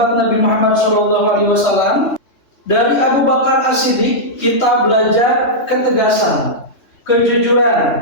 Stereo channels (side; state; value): right; late; 3.2 ms